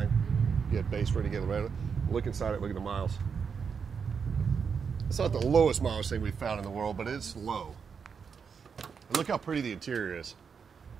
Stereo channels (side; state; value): left; quieter; 6.2 dB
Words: You get base ready to get Laredo. Look inside it, look at the miles. It's not the lowest mileage thing we've found in the world, but it's low. And look how pretty the interior is.